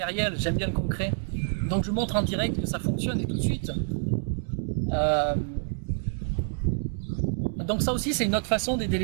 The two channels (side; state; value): left; silent; digital silence